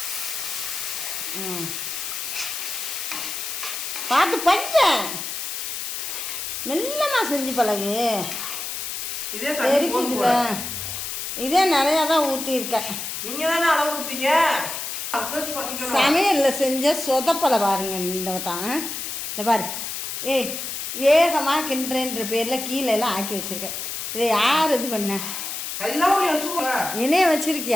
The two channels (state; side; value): noise; left; hiss, 5 dB below the sound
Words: பார்த்து பஞ்ச மெல்லமா செஞ்சு பழகு. தெரிக்குதுல, இதே நிறையா தான் ஊற்றிருக்கேன். நீங்கள் தானே அளவு கொடுத்தீங்க. சமையலில் செஞ்ச சொதப்பலை பாருங்க இந்த வட்டம். இந்த பாரு, வேகமாக கிண்டுறேன்ற பேரில் கீழே எல்லாம் ஆக்கி வச்சுருக்கேன். இதை யார் இது பண்ண? என்னைய